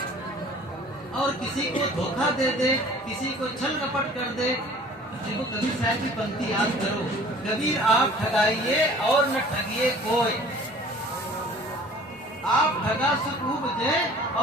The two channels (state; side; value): normal; both; correlation 0.48